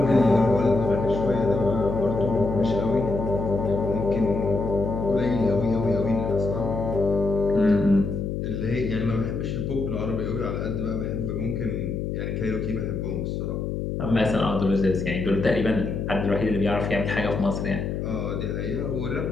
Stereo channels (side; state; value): left; noise; hum, 3 dB below the sound